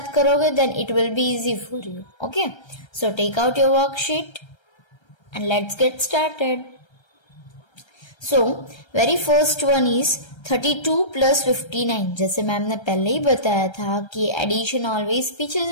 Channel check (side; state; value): right; late; 1.3 ms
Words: करोगे then it will be easy for you. Okay, so take out your worksheet and let's get started. So very first one is 32 प्लस 59। जैसे मैम ने पहले ही बताया था कि एडिशन ऑलवेज पीछे